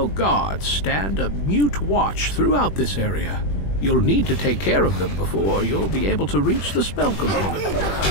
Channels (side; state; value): right; late; 21 ms